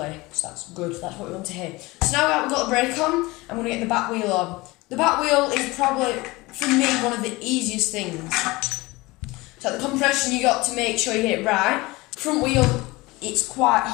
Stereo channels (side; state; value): right; quieter; 22.0 dB